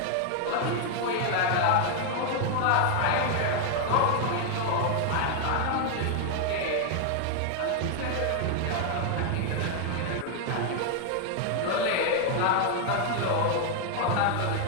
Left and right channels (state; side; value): different; both; correlation 0.00